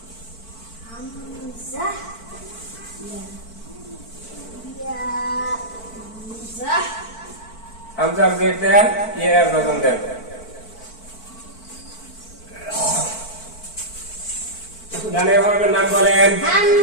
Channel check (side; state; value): right; late; 4.5 ms